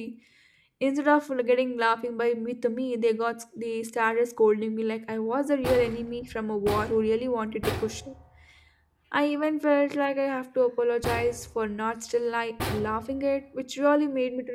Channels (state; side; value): identical; both; correlation 1.00